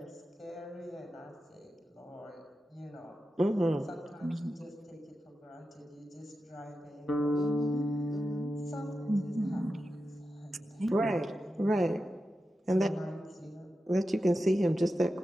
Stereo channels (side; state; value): both; normal; correlation 0.91